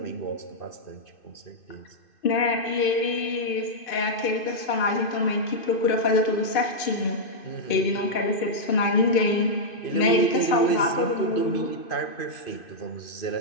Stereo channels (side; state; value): right; late; 2.6 ms